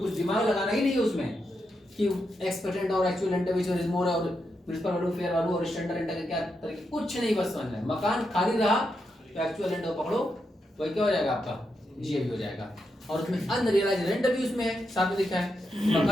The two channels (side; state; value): both; normal; correlation 0.84